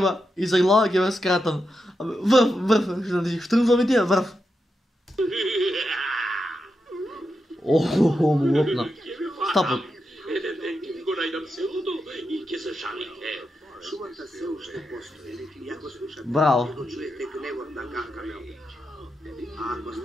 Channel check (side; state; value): both; normal; correlation 0.87